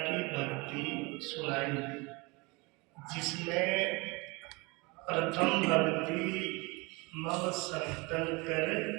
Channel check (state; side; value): quieter; left; 26.4 dB